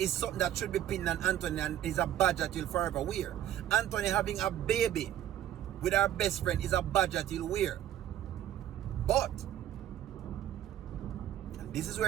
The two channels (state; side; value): quieter; left; 11.7 dB